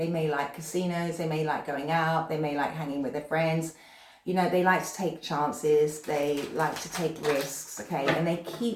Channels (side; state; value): both; identical; correlation 1.00